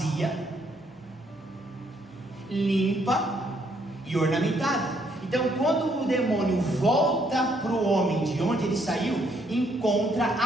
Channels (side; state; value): both; normal; correlation 0.70